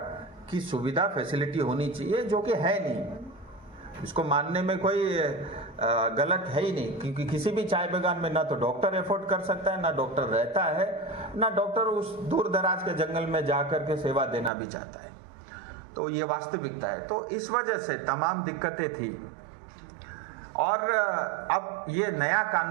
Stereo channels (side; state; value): left; drops out; at 14.5 s